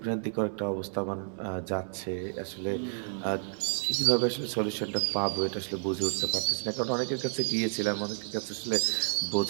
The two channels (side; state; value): left; silent; digital silence